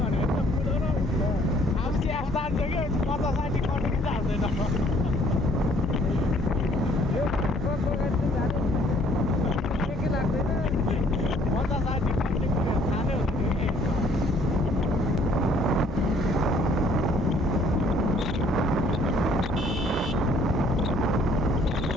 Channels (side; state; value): both; normal; correlation 0.60